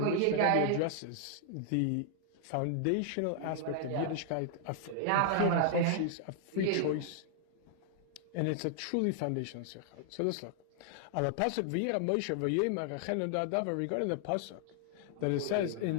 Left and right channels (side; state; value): both; different; correlation 0.00